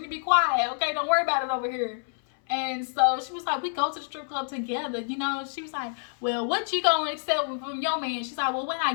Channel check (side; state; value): right; silent; 60 dB below the other